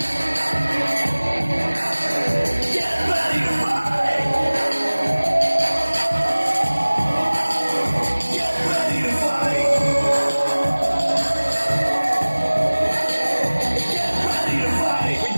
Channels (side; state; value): both; inverted; correlation -1.00